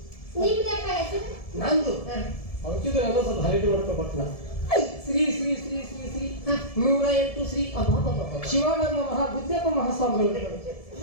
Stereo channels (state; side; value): late; right; 1.7 ms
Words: ನಿಮ್ದಪ್ಪ ಹೆಸರು ನಂದು ಹಾ. ಅವತ್ತಿಗೆ ನಾನು ಸ್ವಲ್ಪ ಹೈಲೈಟ್ ಮಾಡ್ಕೊಬಟ್ನ ಶ್ರೀ ಶ್ರೀ ಶ್ರೀ ಶ್ರೀ ಶ್ರೀ ಹಾ. 108 ಶ್ರೀ ಶಿವಾನಂದ ಮಹಾಬುದ್ಧಪ್ಪ ಮಹಾಸ್ವಾಮಿಗಳು